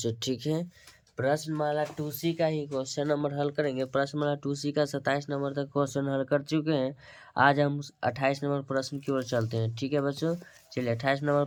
ठीक है, प्रश्नमाला 2C का ही क्वेश्चन नंबर हल करेंगे। प्रश्नमाला 2C का 27 नंबर तक क्वेश्चन हल कर चुके हैं। आज हम 28 नंबर प्रश्न की ओर चलते हैं। ठीक है बच्चों, चलिए 28 नंबर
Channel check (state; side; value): identical; both; correlation 1.00